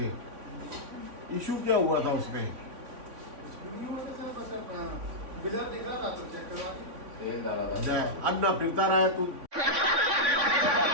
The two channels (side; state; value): left; late; 3.5 ms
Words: इशू क्या हुआ था उसमें? अन्ना फिरता रहा है तू